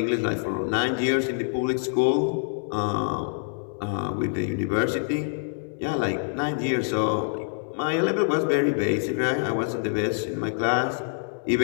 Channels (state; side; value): silent; right; digital silence